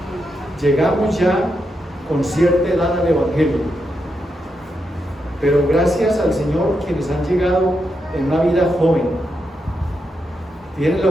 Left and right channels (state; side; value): normal; both; correlation 0.84